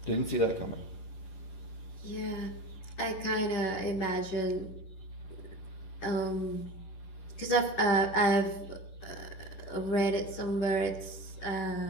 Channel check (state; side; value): late; right; 11 ms